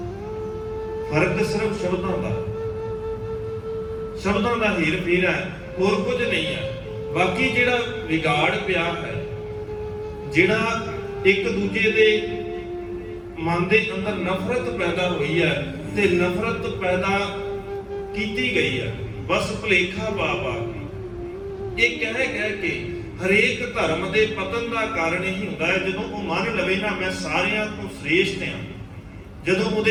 ਫਰਕ ਸਿਰਫ ਸ਼ਬਦਾਂ ਦਾ ਹੀਰ ਫੇਰ ਹੈ, ਹੋਰ ਕੁਝ ਨਹੀਂ ਹੈ। ਬਾਕੀ ਜਿਹੜਾ ਵਿਗਾੜ ਪਿਆ ਹੈ, ਜਿਹੜਾ ਇੱਕ ਦੂਜੇ ਦੇ ਮਨ ਦੇ ਅੰਦਰ ਨਫ਼ਰਤ ਪੈਦਾ ਹੋਈ ਹੈ, ਤੇ ਨਫ਼ਰਤ ਪੈਦਾ ਕੀਤੀ ਗਈ ਹੈ ਬਸ ਭੁਲੇਖਾ ਪਾ ਕੇ। ਇਹ ਕਹਿ ਕੇ ਹਰੇਕ ਧਰਮ ਦੇ ਪਤਨ ਦਾ ਕਾਰਨ ਇਹੀ ਹੁੰਦਾ ਹੈ, ਜਦੋਂ ਉਹ ਮੰਨ ਲਵੇ ਨਾ ਮੈਂ ਸਾਰਿਆਂ ਤੋਂ ਸ੍ਰੇਸ਼ਟ ਹਾਂ। ਜਦੋਂ ਉਹਦੇ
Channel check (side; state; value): both; identical; correlation 1.00